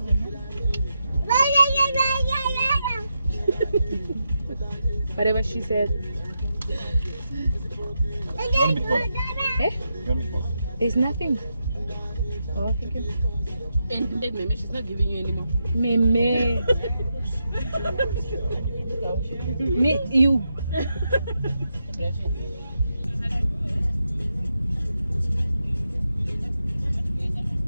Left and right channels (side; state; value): both; inverted; correlation -0.85